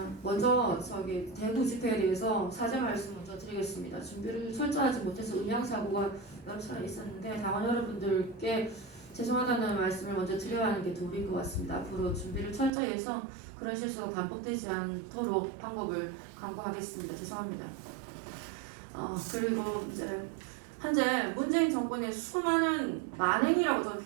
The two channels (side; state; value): left; drops out; at 12.7 s